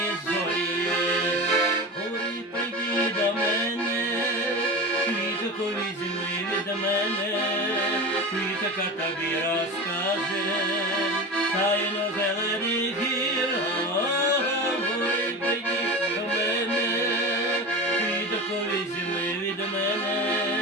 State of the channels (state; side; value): normal; both; correlation 0.28